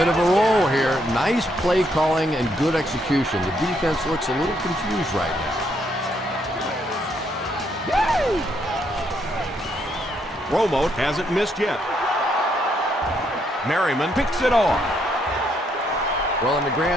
of a roll here. Nice play calling and good execution. The defense looks a little confused right now. Romo hasn't missed yet. Merriman picks it off. Well, in the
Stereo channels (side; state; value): both; normal; correlation 0.73